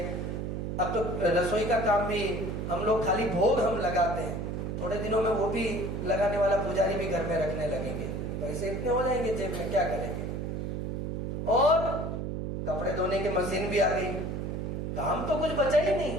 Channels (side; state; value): right; noise; hum, 3 dB below the sound